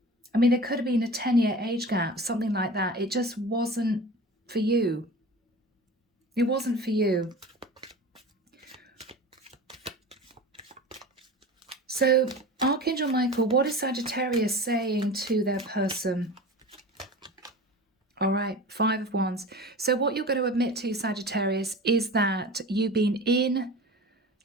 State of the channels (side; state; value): both; normal; correlation 0.35